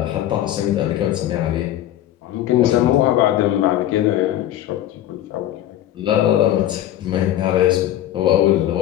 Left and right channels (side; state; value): right; quieter; 12.6 dB